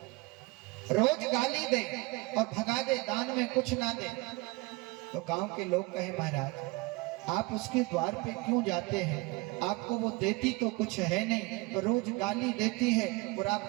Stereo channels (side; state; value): left; quieter; 24.3 dB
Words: रोज गाली दे और भगा दे, दान में कुछ ना दे। तो गांव के लोग कहे महाराज आप उसके द्वार पे क्यों जाते हैं, आपको वो देती तो कुछ है नहीं, रोज गाली देती है और आप